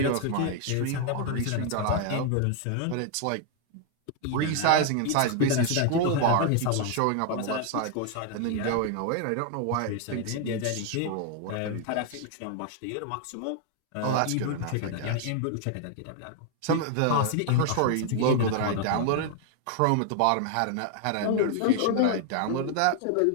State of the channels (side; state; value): both; different; correlation 0.00